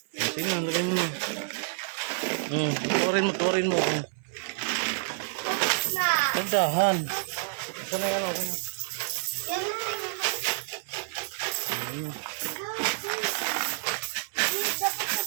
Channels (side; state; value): left; silent; 59 dB below the other